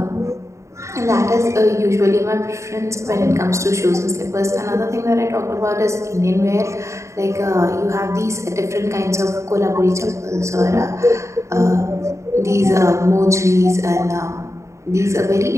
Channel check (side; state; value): left; late; 0.14 ms